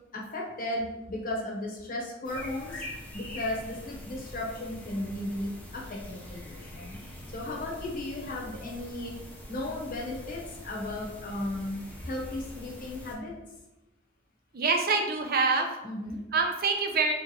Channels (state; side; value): normal; both; correlation 0.11